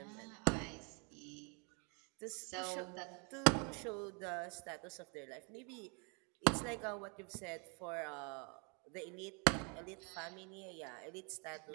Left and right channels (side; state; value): left; quieter; 34.3 dB